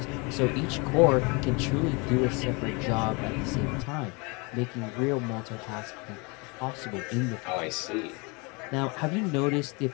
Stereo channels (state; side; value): quieter; right; 29.4 dB